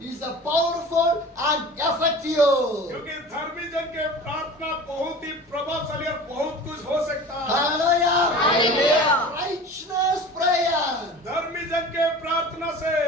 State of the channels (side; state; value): both; normal; correlation 0.38